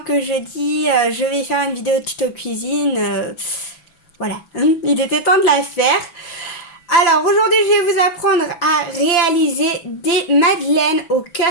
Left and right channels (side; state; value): right; late; 6.0 ms